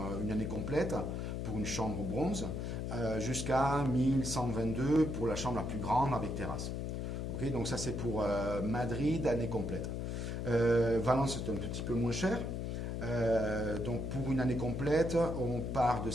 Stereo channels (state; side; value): noise; left; hum, 3 dB below the sound